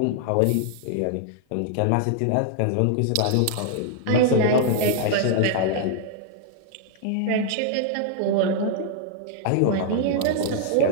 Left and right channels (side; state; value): both; different; correlation 0.00